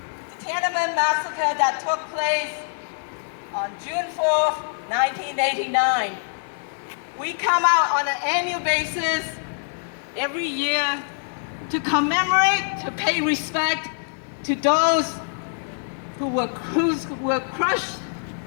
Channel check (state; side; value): silent; right; digital silence